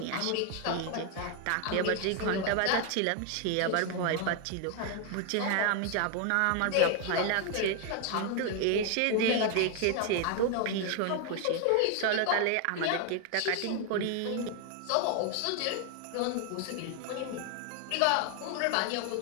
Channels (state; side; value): different; both; correlation 0.01